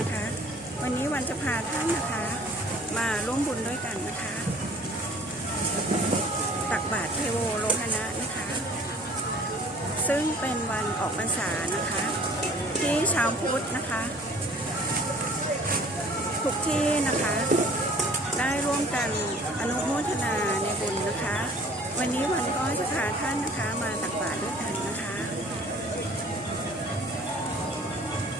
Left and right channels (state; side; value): normal; both; correlation 0.51